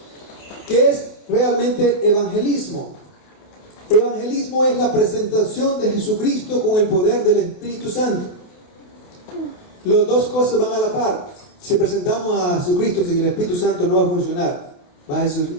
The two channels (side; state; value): right; late; 28 ms